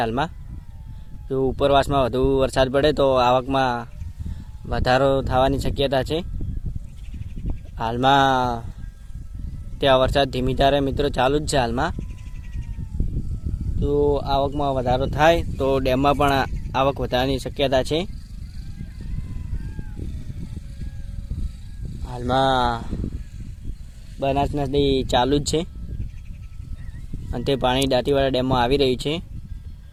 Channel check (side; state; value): both; identical; correlation 1.00